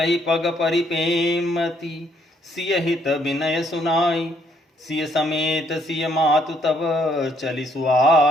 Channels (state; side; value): normal; both; correlation 0.69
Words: पग परिपेमति, सिय हित विनय सुनाई। सिय समेत सिय मातु तब, चलि